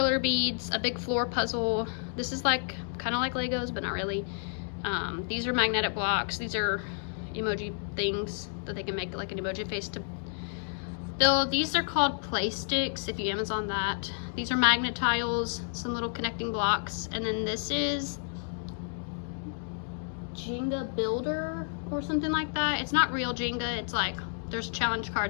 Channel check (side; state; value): right; silent; digital silence